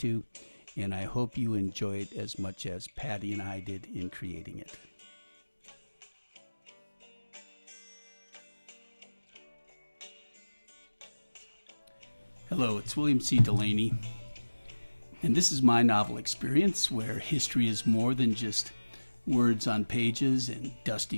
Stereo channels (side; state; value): both; inverted; correlation -1.00